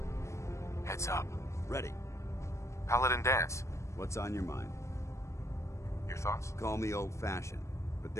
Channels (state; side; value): late; right; 0.14 ms